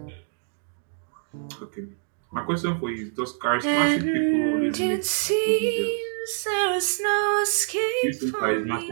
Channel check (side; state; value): left; silent; digital silence